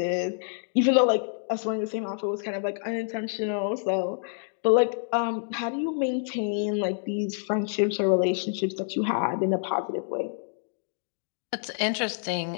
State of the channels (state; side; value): silent; right; digital silence